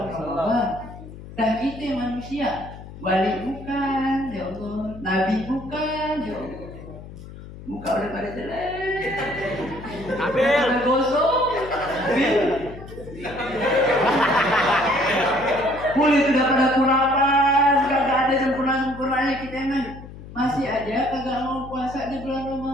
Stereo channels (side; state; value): left; noise; hum, 15 dB below the sound